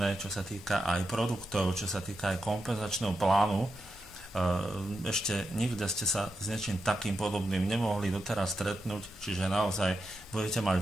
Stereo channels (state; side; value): normal; both; correlation 0.87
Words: čo sa týka aj produktov, čo sa týka aj kompenzačného plánu. Ešte nikde ste sa s niečím takým podobným nemohli doteraz stretnúť, čiže naozaj budete mať